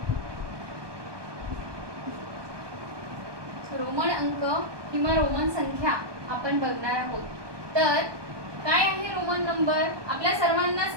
रोमन अंक किंवा रोमन संख्या आपण बघणार आहोत. तर काय आहे रोमन नंबर? आपल्या सर्वांनाच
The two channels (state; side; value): late; left; 1.2 ms